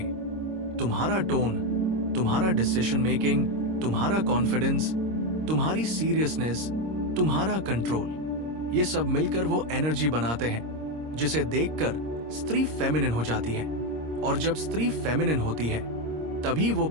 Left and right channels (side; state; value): left; late; 26 ms